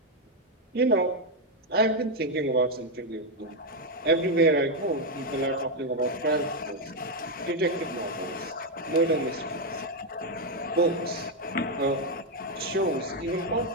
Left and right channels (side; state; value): both; normal; correlation 0.02